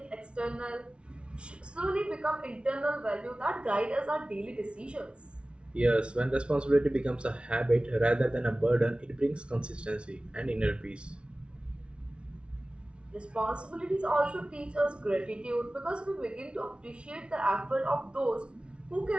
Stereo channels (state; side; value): late; left; 0.058 ms